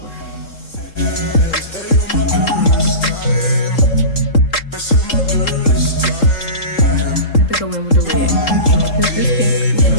I have to go in with the red because this pink was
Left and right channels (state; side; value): late; right; 3.7 ms